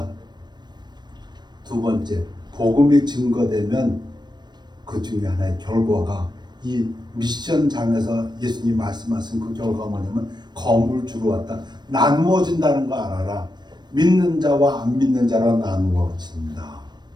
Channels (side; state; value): left; late; 0.21 ms